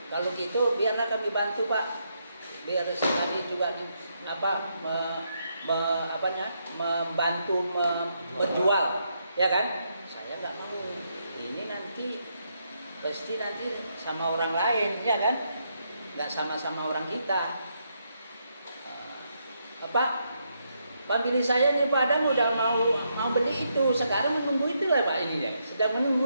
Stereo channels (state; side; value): inverted; both; correlation -0.79